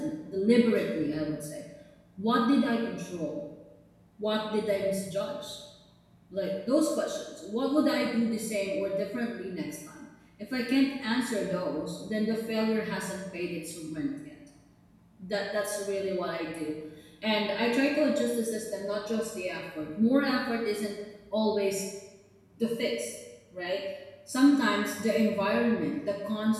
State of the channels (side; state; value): both; identical; correlation 1.00